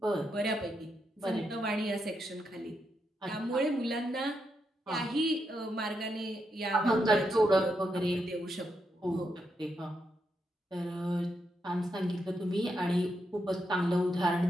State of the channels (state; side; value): normal; both; correlation 0.82